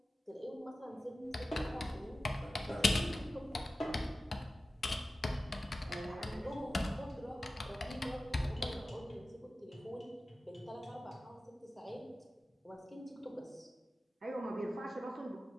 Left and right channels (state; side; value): normal; both; correlation 0.95